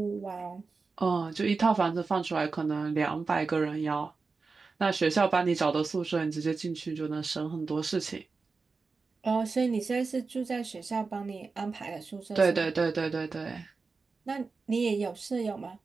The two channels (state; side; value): quieter; left; 4.4 dB